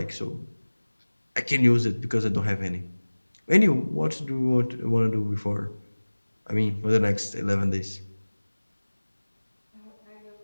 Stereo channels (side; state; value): both; inverted; correlation -1.00